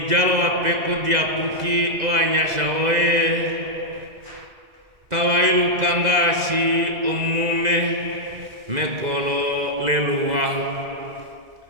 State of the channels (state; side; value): late; left; 2.0 ms